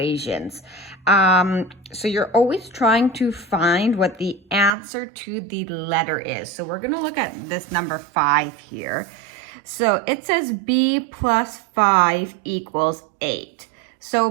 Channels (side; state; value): left; drops out; at 4.7 s